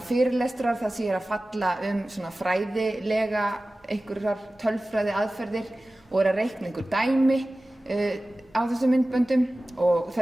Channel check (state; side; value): normal; both; correlation 0.96